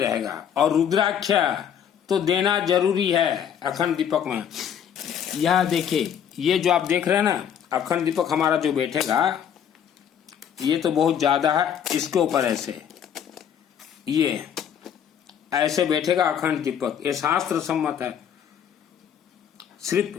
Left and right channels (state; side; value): quieter; right; 8.7 dB